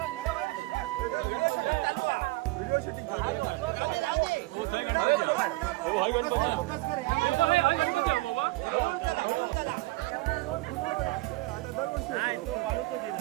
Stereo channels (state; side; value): quieter; left; 20.8 dB